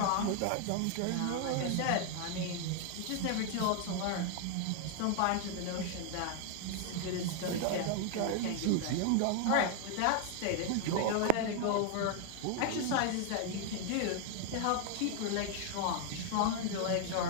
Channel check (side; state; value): both; different; correlation 0.00